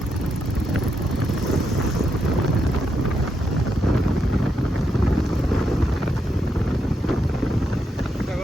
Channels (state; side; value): normal; both; correlation 0.82